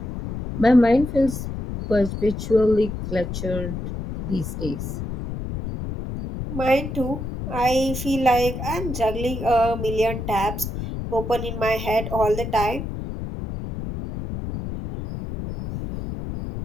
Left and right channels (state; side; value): noise; left; rumble, 6 dB below the sound